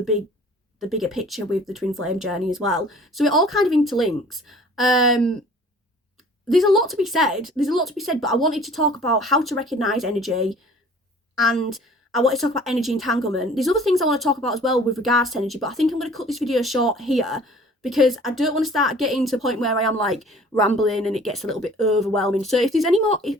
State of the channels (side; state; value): both; normal; correlation 0.50